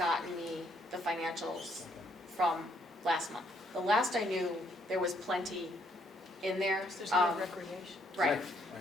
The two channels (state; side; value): normal; both; correlation 0.70